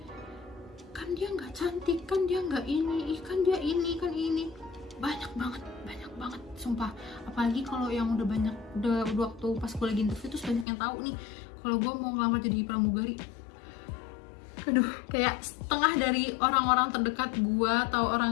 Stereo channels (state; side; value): drops out; right; at 10.7 s